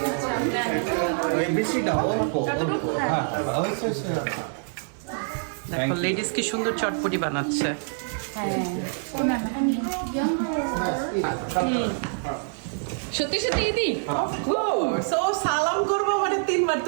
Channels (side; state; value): left; silent; 61 dB below the other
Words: বেশি না, অল্প অল্প। হ্যাঁ দেখো লেডিস কি সুন্দর চটপটি বানাচ্ছে। সত্যি সত্যি দিদি সো সালাম করবো মানে 3 বার